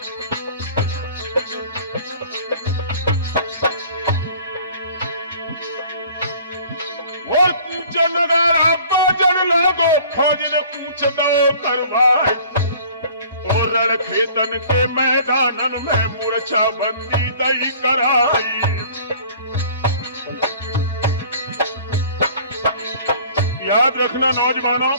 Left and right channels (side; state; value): both; inverted; correlation -0.49